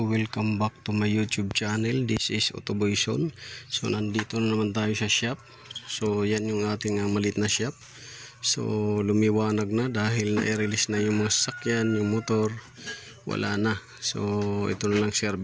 welcome back to my YouTube channel. This is Autoboyson. So nandito na naman tayo sa shop. So yan yung ating maliit na shop. So lumiwanag na dahil na-release na yung mga sasakyan, yung motor. Wala na. So ito na lang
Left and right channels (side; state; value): both; identical; correlation 1.00